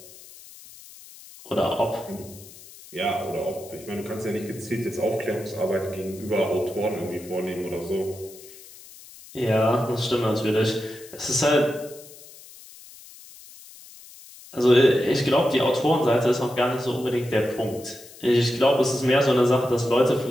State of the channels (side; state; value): left; noise; hiss, 19 dB below the sound